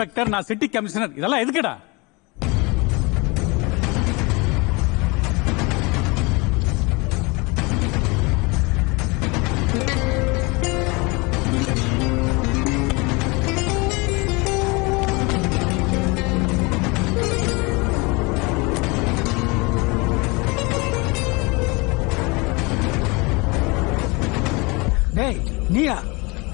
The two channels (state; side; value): quieter; right; 27.0 dB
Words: நான் சிட்டி கமிஷனர், இதெல்லாம் எதுக்குடா? டேய் நீயா?